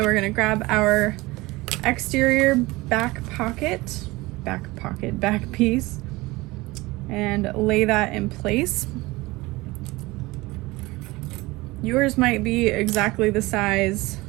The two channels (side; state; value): left; quieter; 21.4 dB